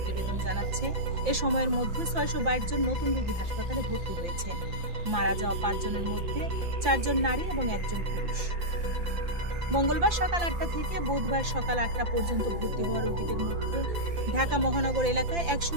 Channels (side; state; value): left; late; 5.8 ms